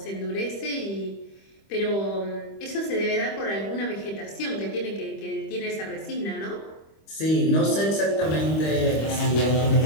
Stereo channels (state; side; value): late; right; 25 ms